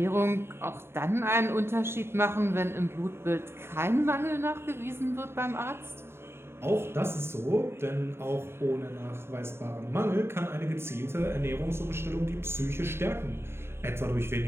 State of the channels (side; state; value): left; late; 0.12 ms